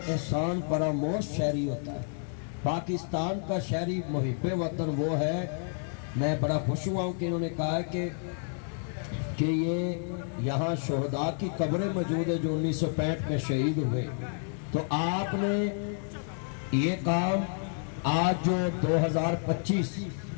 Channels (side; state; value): right; silent; 58 dB below the other